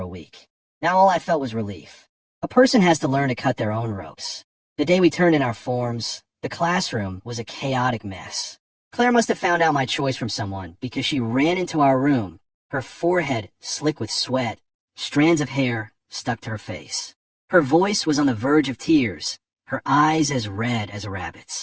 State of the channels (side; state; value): both; identical; correlation 1.00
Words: a week. Now all I felt was relief. A person has to learn to cut their own ropes. The day we turned in our forms, the classroom was a chaotic mess. Claire must have found out my choice from someone because she ran into our room, her forehead slick with sweat, strands of hair stuck to her face. Her voice was on the verge of tears, her eyes as red as a